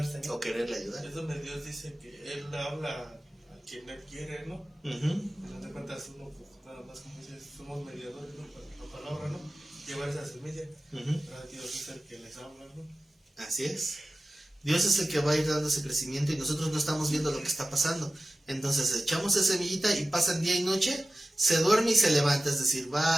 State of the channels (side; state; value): both; normal; correlation 0.95